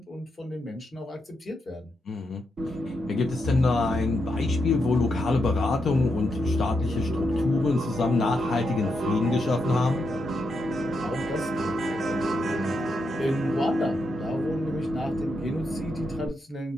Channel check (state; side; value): normal; both; correlation 0.83